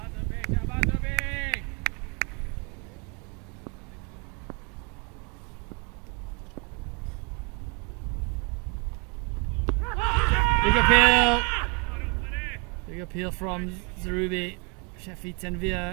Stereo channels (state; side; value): quieter; left; 33.6 dB